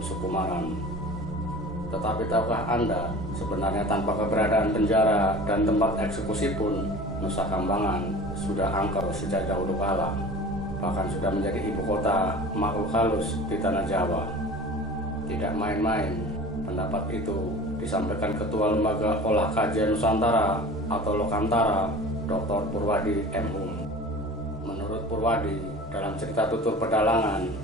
Sukumaran. Tetapi tahukah Anda, sebenarnya tanpa keberadaan penjara dan tempat eksekusi pun, Nusa Kambangan sudah angker sejak dahulu kala, bahkan sudah menjadi ibu kota makhluk halus di tanah Jawa. Tidak main-main, pendapat itu disampaikan Ketua Lembaga Olah Kajian Nusantara atau Lokantara, Dr. Purwadi M.Hu. Menurut Purwadi, dalam cerita tutur pedalangan,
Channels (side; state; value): both; normal; correlation 0.40